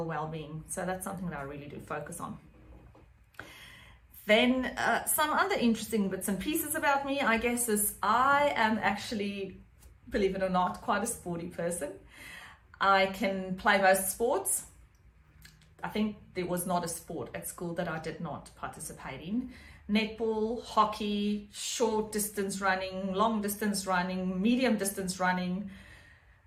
well-being. So that's something that I really do focus on. Then some other interesting bits and pieces about me, I guess, is I am actually, believe it or not, quite a sporty person. I can play most sports. I think there was not a sport at school that I did not participate in. Netball, hockey, short distance running, long distance running, medium distance running.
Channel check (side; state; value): both; identical; correlation 1.00